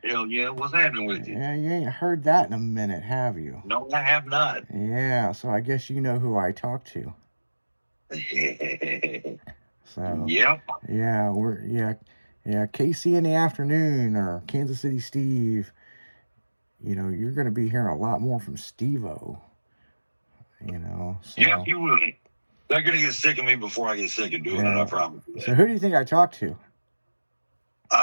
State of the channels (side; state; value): both; inverted; correlation -1.00